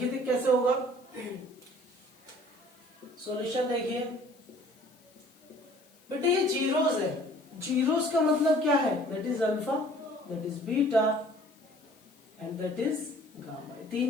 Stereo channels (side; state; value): left; noise; hiss, 30 dB below the sound